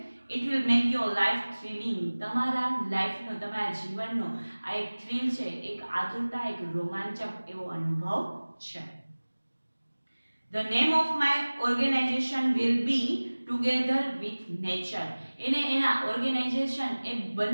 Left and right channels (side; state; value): both; inverted; correlation -1.00